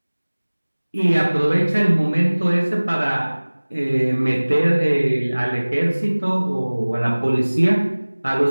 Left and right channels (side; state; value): both; inverted; correlation -1.00